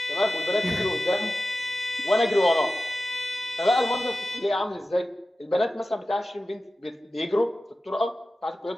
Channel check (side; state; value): both; normal; correlation 0.94